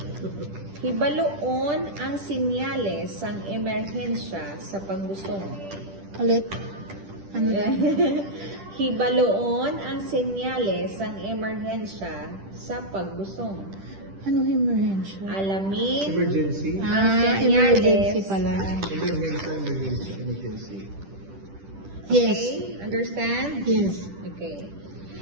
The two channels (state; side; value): late; left; 10 ms